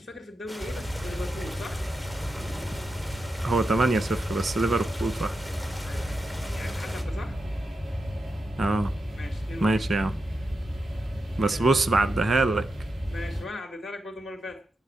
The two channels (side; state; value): both; normal; correlation 0.88